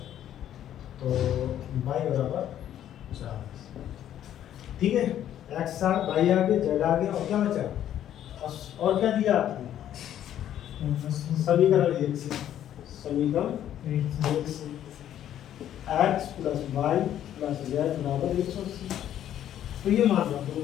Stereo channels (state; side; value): quieter; right; 11.1 dB